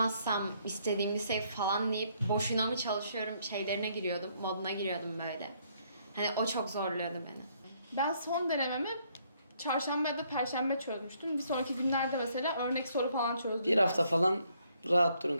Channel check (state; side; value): inverted; both; correlation -0.69